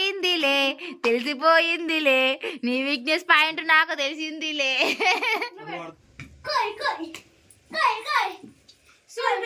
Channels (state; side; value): identical; both; correlation 1.00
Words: నీ వీక్నెస్ పాయింట్ నాకు తెలిసిందిలే.